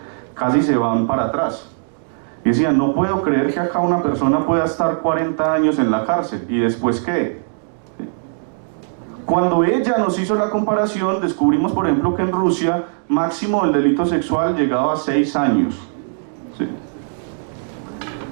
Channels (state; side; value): silent; left; 63 dB below the other